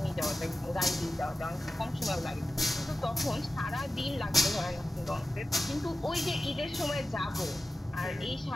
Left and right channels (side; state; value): both; normal; correlation 0.94